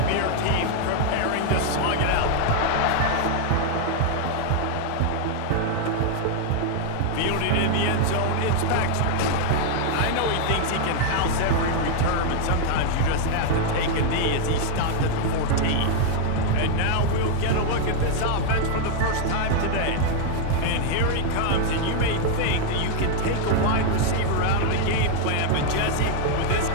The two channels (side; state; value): both; different; correlation 0.00